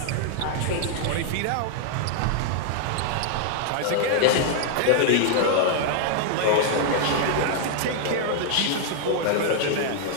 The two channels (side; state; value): both; different; correlation -0.01